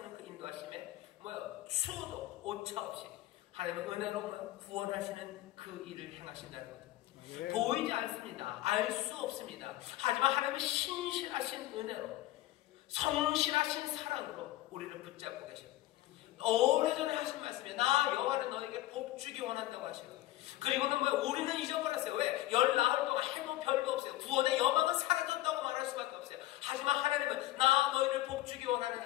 그 인도하심에 추워도 오차 없이 하나님은 은혜로 구원하시는 그 일을 행하신다는 거죠. 네. 보이지 않습니다. 알 수 없습니다. 하지만 하나님은 신실하신 은혜로, 성실하신 사랑으로 우리를 붙잡고 계십니다. 오래전에 하신 말씀에 나 여호와는 너에게 복 주기 원한다고 하시고, 그리고는 우리는 잊어버렸어요. 왜? 열 나흘 동안 해도 별도 없어요. 구원의 여망은 사라졌다고 말할 수밖에 없어요. 하지만 하나님은 나 너희를 복 주기 원하는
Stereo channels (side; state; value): right; quieter; 16.0 dB